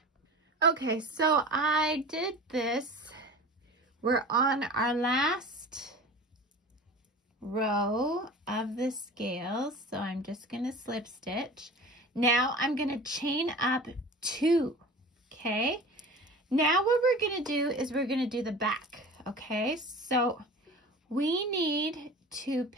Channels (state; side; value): normal; both; correlation 0.38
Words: Okay, so I did this. We're on our last row of the scales, so I'm just going to slip stitch. Now I'm going to chain up 2, okay? Now what we're going to do is we're going to do the back, okay? So we need to